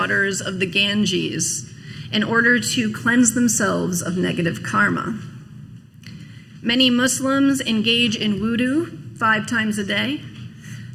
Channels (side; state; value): both; identical; correlation 1.00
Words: of the Ganges in order to cleanse themselves of negative karma. Many Muslims engage in wudu 5 times a day.